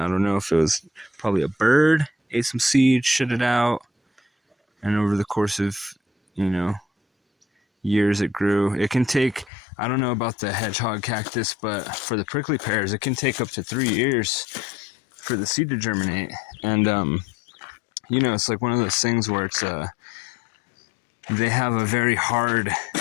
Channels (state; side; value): drops out; right; at 9.5 s